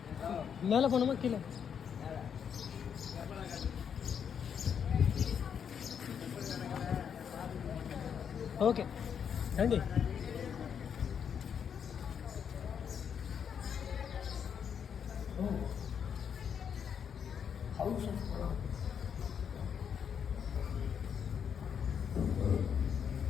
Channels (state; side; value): quieter; right; 7.6 dB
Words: மேலே போகணுமா கீழே? Okay రండి. House of Kalam.